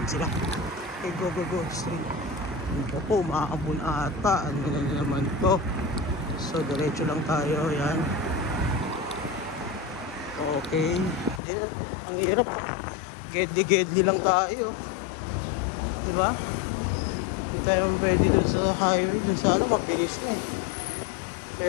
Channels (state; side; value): drops out; right; at 11.4 s